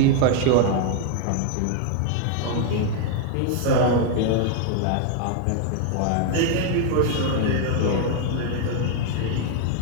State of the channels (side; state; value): both; different; correlation 0.00